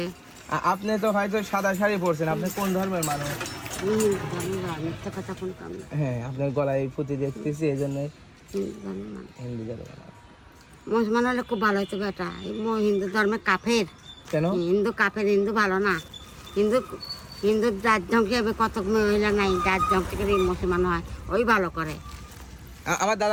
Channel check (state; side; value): identical; both; correlation 1.00